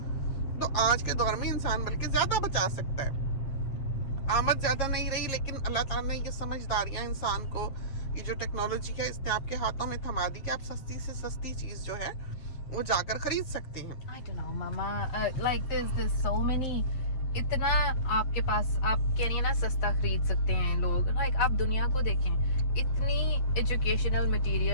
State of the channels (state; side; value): late; right; 7.7 ms